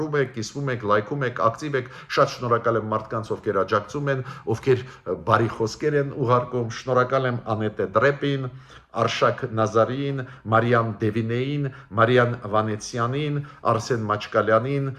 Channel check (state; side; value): identical; both; correlation 1.00